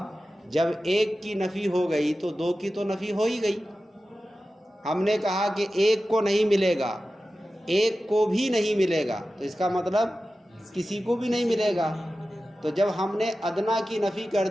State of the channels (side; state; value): both; normal; correlation 0.94